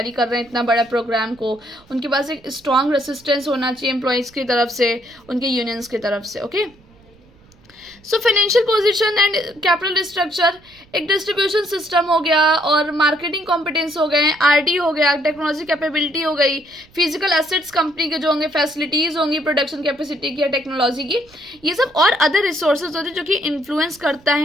कर रहे हैं इतना बड़ा प्रोग्राम को, उनके पास एक स्ट्रॉन्ग रेसिस्टेंस होना चाहिए एम्प्लॉयज़ की तरफ से, उनके यूनियंस की तरफ से। Okay, so financial position and capital structure, एक डिस्ट्रीब्यूशन सिस्टम हो गया, और मार्केटिंग कॉम्पिटेंस हो गए, आरडी हो गया, टेक्नोलॉजी कैपेबिलिटी हो गई, फिजिकल एसेट्स कंपनी के जो होंगे, फैसिलिटीज़ होंगी प्रोडक्शन कैपेसिटी की या टेक्नोलॉजी की, ये सब और अदर रिसोर्सेज होते हैं जो कि इन्फ्लुएंस करते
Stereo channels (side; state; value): right; noise; rumble, 28 dB below the sound